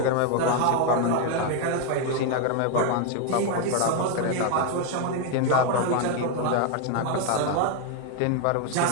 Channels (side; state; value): both; different; correlation 0.01